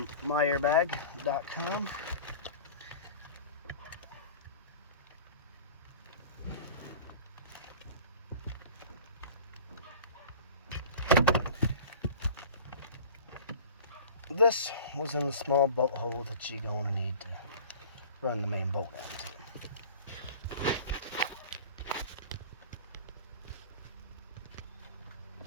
myairbag.com. This was in the small bolt hole that you're going to need to run the main bolt onto.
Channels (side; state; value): both; inverted; correlation -0.39